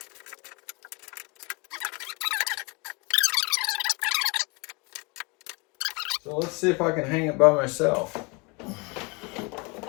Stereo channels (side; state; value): right; quieter; 29.2 dB